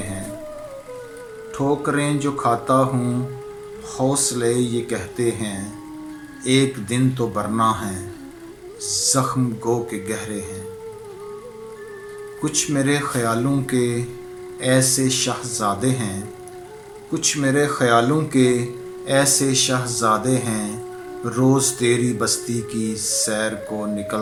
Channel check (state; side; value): identical; both; correlation 1.00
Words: ठोकरें जो खाता हूँ हौसले ये कहते हैं, एक दिन तो बरना है ज़ख्म गो के गहरे हैं। कुछ मेरे ख़यालों के ऐसे शहज़ादे हैं, कुछ मेरे ख़यालों के ऐसे शहज़ादे हैं, रोज़ तेरी बस्ती की सैर को